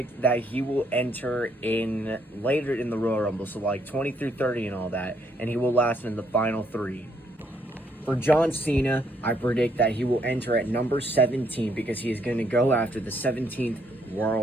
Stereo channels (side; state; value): both; normal; correlation 0.71